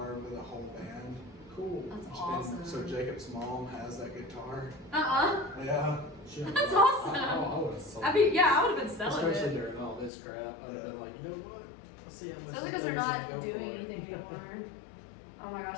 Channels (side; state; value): right; drops out; at 10.1 s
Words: with a whole band. Cool. That's And awesome. so Jacob's mom has that guitar. Uh-uh. Yeah. That's awesome. I would have sold I mean, yeah, I would have been selling especially it. during all this crap. I'd have been like, you know what? Let's see how much. Especially because they're things not go doing for. anything anymore. Oh my gosh,